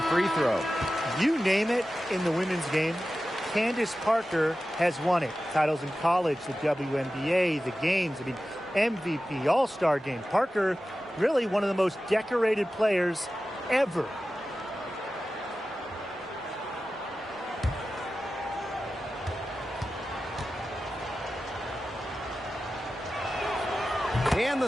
free throw. You name it in the women's game, Candace Parker has won it. Titles in college, the WNBA, the games, MVP, All-Star game. Parker, really one of the most decorated players ever. And the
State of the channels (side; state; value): both; normal; correlation 0.94